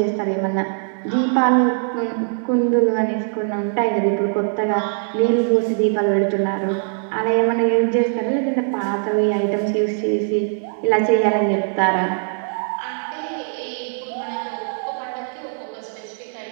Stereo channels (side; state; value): left; silent; 65 dB below the other